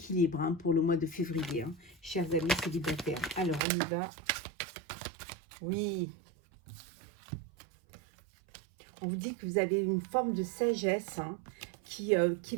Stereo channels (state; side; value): drops out; left; at 3.6 s